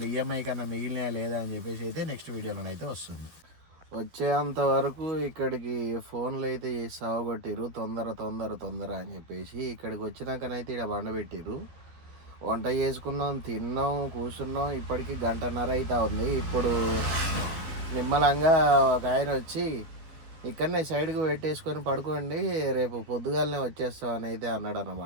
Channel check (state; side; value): late; left; 12 ms